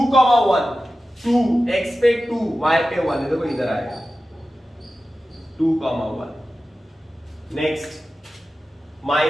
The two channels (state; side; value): normal; both; correlation 0.94